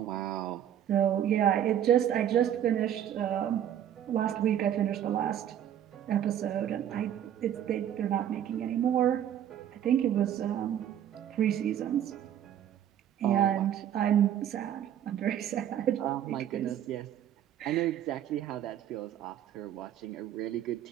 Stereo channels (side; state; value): left; quieter; 10.3 dB